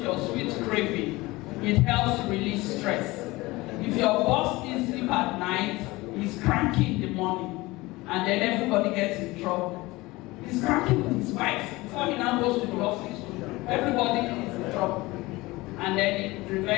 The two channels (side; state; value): right; quieter; 21.1 dB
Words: your sweet craving. It helps to release stress. If your boss is sleep at night, he's cranky in the morning, and then everybody gets in trouble. He's cranky with his wife before he now goes to the office. Everybody is in trouble. And then it